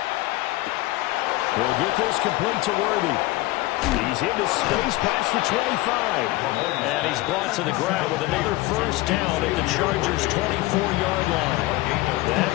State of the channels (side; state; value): right; quieter; 19.1 dB